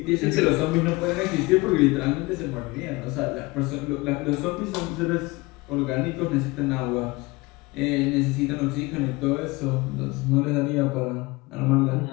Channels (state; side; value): quieter; right; 23.3 dB